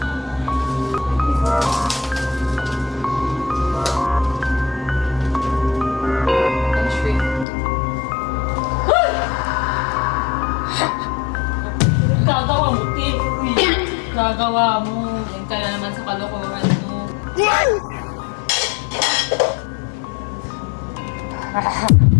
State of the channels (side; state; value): right; drops out; at 7.5 s